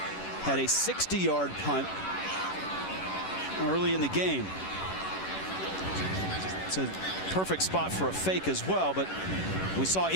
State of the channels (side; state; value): right; late; 11 ms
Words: had a 60-yard punt early in the game. It's a perfect spot for a fake as well, but we saw